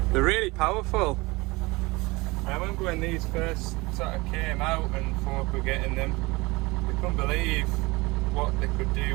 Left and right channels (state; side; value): quieter; left; 23.4 dB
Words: They're really powerful. I remember when these first sort of came out and folk were getting them, they couldn't believe what they could